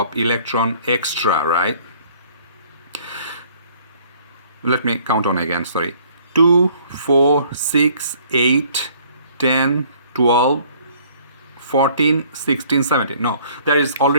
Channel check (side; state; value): both; inverted; correlation -0.58